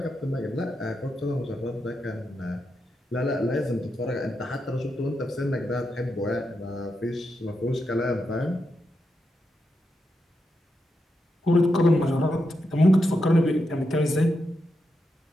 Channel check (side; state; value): both; normal; correlation 0.85